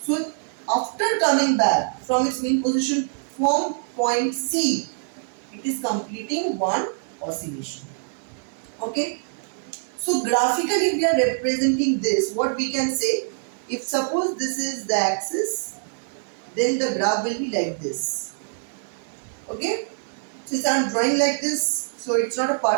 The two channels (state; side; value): silent; left; 62 dB below the other